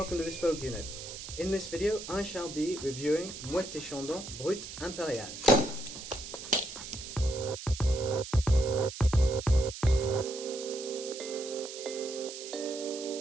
to Bespoke Unit. In this video I shall be reviewing Moët Chandon Brut Impérial.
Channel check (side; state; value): right; noise; hiss, 10 dB below the sound